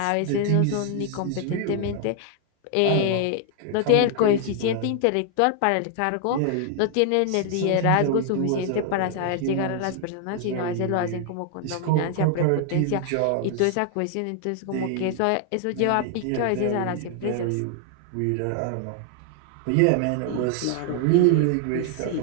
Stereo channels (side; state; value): both; different; correlation 0.00